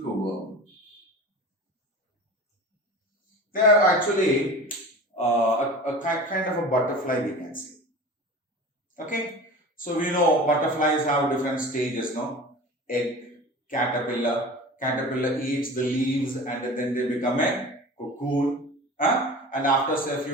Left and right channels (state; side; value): normal; both; correlation 0.36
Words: They are actually a kind of a butterfly, we can say. Okay, so we know butterflies have different stages, no? Egg, caterpillar. Caterpillar eats the leaves and then they become a cocoon. And after say a